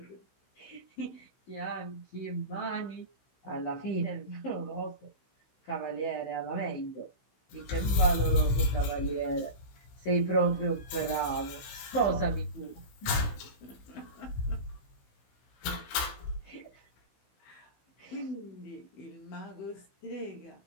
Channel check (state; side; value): late; right; 16 ms